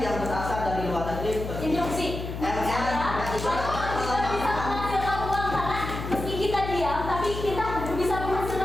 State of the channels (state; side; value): noise; left; hum, 7 dB below the sound